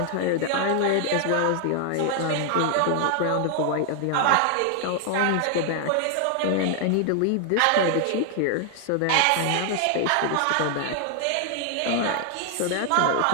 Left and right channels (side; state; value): both; different; correlation 0.00